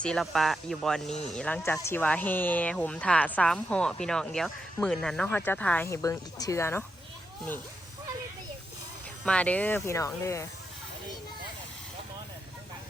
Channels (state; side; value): normal; both; correlation 0.85